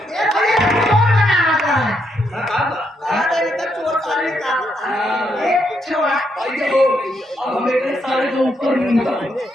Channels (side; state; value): both; normal; correlation 0.78